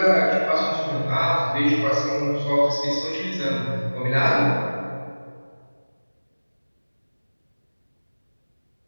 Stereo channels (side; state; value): both; inverted; correlation -1.00